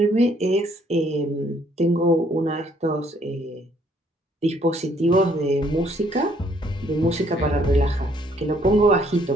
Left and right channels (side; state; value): both; normal; correlation 0.65